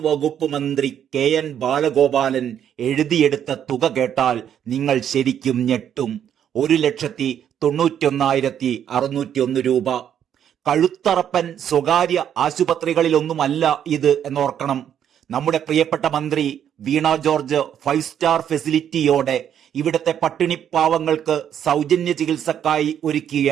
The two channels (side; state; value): left; quieter; 9.4 dB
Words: വകുപ്പ് മന്ത്രി KN ബാലഗോപാലൻ എഴുതിയെടുത്ത തുക കേട്ടാൽ നിങ്ങൾ ശരിക്കും ഞെട്ടും. 1,91,601 രൂപ. കഴുത്തറപ്പൻ സ്വകാര്യ ആശുപത്രികളിലൊന്നുമല്ല ഇത് എന്നോർക്കണം. നമ്മുടെ പ്രിയപ്പെട്ട മന്ത്രി വീണ ജോർജ് 5 സ്റ്റാർ ഫെസിലിറ്റിയോടെ ഇവിടുത്തെ പട്ടിണിപ്പാവങ്ങൾക്ക് സൗജന്യ ചികിത്സക്കായി ഒരുക്കിയ